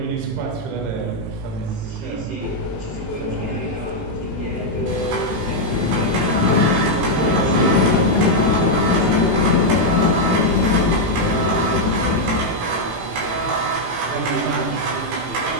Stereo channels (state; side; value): late; left; 18 ms